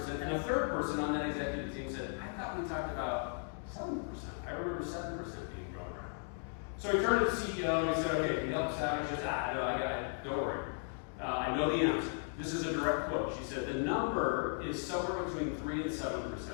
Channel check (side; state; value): right; silent; 54 dB below the other